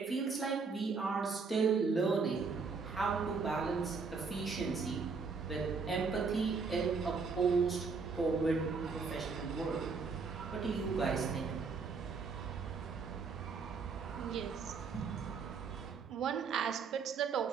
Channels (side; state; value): left; quieter; 4.9 dB